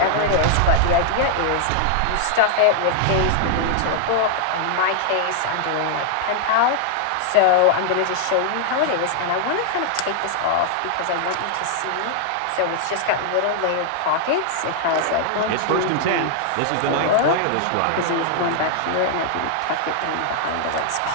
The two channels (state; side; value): different; both; correlation -0.01